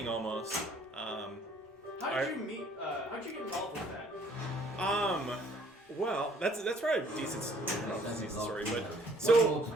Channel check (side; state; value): both; normal; correlation 0.59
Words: almost. How did you meet? How'd you get involved with that? Well, that's probably a decent story, but One so more to